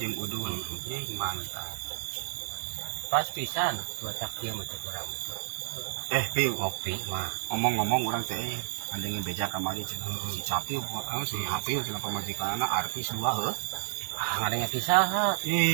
udun. Mantap. Pas pisan cuaca kieu mah teh urang. Piu, Ngopi mah. ngomong-ngomong urang teh andeng beja kamari cenah si Capiu si Hapiu cenah pamajikanna artis dua heuh. Ngadenge pisaha.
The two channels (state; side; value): silent; left; digital silence